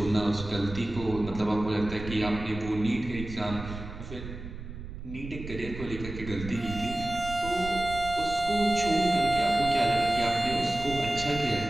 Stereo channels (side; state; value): right; noise; rumble, 10 dB below the sound